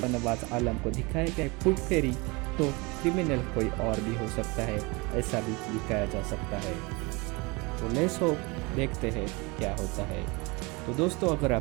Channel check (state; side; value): quieter; left; 26.5 dB